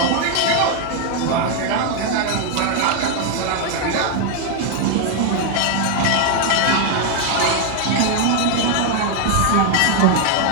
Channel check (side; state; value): both; different; correlation 0.01